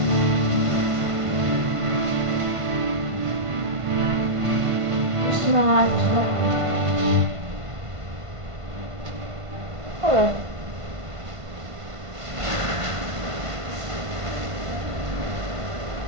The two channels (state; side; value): late; left; 1.5 ms